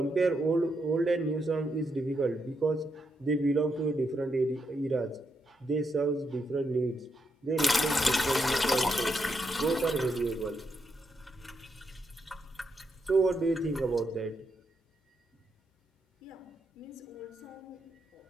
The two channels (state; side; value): normal; both; correlation 0.81